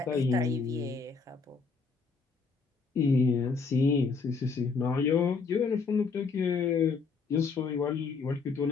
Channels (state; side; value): quieter; right; 4.9 dB